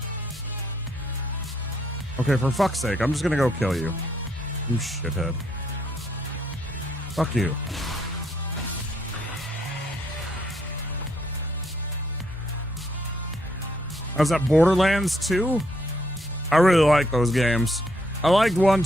Okay, for fuck's sake, I'm just gonna go kill you. You shithead. Fuck you. Was that Borderlands 2? I really like those games. I liked 1,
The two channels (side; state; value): both; normal; correlation 0.73